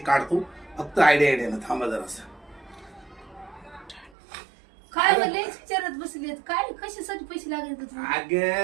फक्त आयडियाने. थांबा जरासं. काय म्हणले विचारत बसलेत काय कशासाठी पैसे लागले तुम्हाला?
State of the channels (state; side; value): drops out; left; at 4.1 s